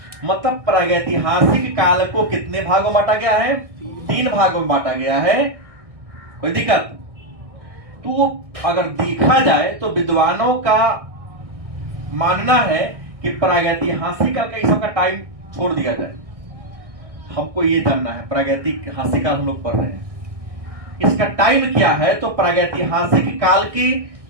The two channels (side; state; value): left; late; 1.6 ms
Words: मतलब प्रागैतिहासिक काल को कितने भागों में बांटा गया है, 3 भागों में बांटा गया है। कोई दिक्कत? तो अगर देखा जाए तो विद्वानों का मानना है कि प्रागैतिहासिक काल का इस सबका टाइम छोड़ दिया जाए। हमको ये जानना है, प्रागैतिहासिक काल हम लोग पढ़ रहे हैं, इसका टाइम क्या है। तो प्रागैतिहासिक काल के